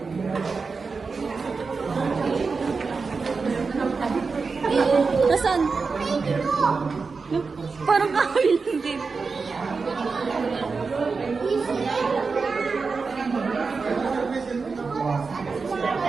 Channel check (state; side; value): quieter; left; 4.6 dB